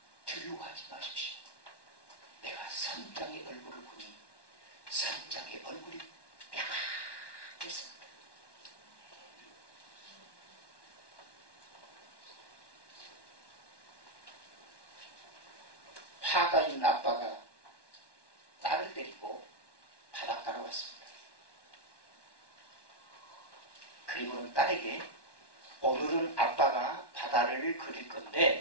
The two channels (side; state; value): right; late; 1.1 ms